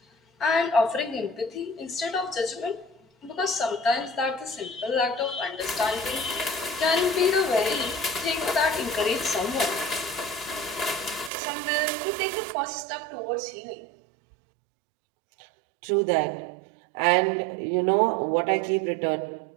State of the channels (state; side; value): drops out; left; at 11.3 s